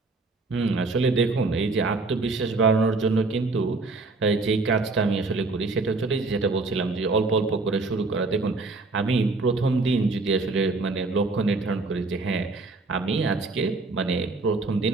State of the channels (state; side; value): quieter; left; 3.6 dB